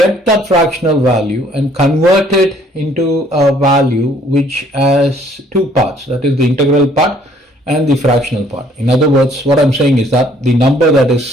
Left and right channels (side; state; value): both; normal; correlation 0.61